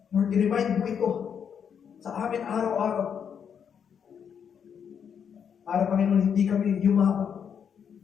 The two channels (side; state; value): right; quieter; 7.6 dB